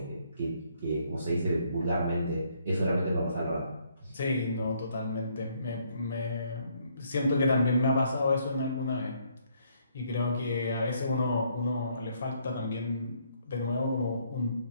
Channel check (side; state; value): both; inverted; correlation -0.68